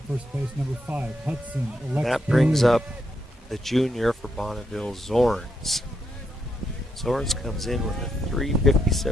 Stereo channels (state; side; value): normal; both; correlation 0.79